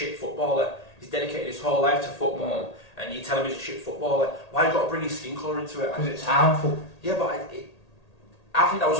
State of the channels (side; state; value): right; late; 1.8 ms